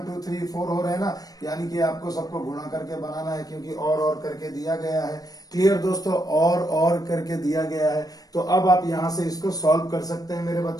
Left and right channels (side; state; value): right; late; 0.18 ms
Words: 2 3 4 हो रहे हैं ना, यानी कि आपको सबको गुणा करके बनाना है, क्योंकि और करके दिया गया है। क्लियर दोस्तों, और करके दिया गया है। तो अब आप यहां से इसको सॉल्व कर सकते हैं मेरे